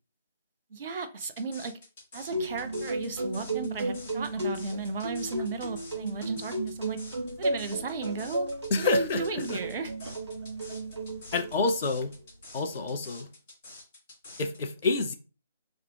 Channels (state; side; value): inverted; both; correlation -0.60